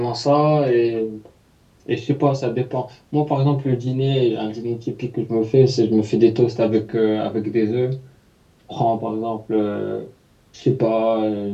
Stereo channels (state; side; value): identical; both; correlation 1.00